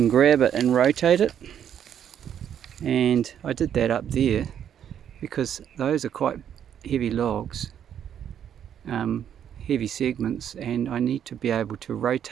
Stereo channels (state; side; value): quieter; left; 9.2 dB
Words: grab it and rotate it. And I did that up there because those are quite heavy logs, heavy segments, and I need to be able to